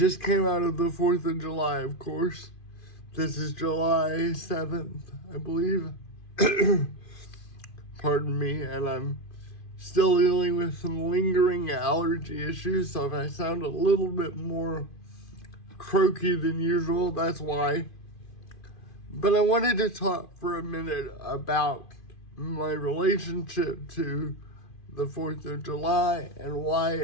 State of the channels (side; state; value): right; late; 2.4 ms